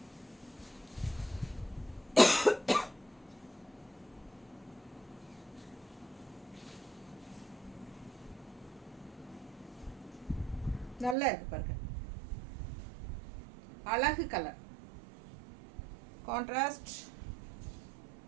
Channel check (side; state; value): left; drops out; at 11.2 s